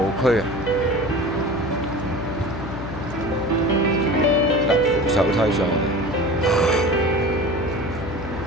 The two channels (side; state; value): left; noise; hum, 9 dB below the sound